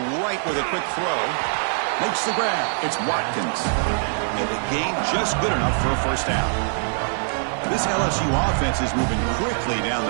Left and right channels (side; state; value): left; silent; digital silence